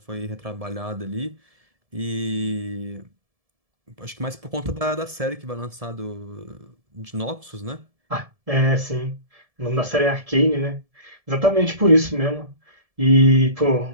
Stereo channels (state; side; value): late; left; 1.7 ms